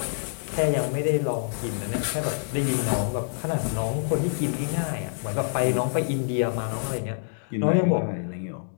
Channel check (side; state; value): right; silent; digital silence